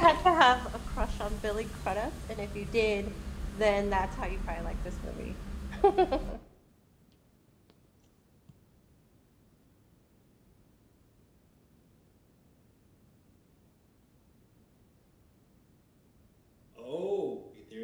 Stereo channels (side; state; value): both; identical; correlation 1.00